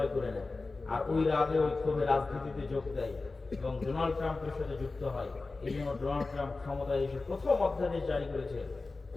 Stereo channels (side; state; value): right; quieter; 3.6 dB